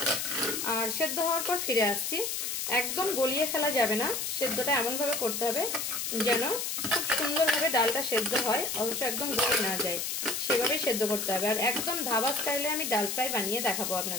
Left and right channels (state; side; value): noise; left; hiss, 2 dB below the sound